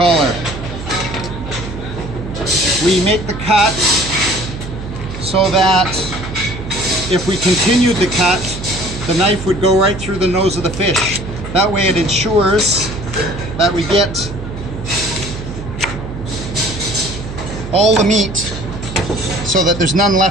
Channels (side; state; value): right; noise; hum, 9 dB below the sound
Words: We make the cut so that if we continued the cut, the knife would go right through the nose of the fish. That way it ensures that we get all the meat so that there's none